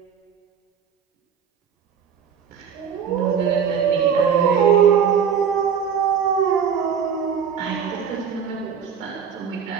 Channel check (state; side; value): quieter; left; 7.3 dB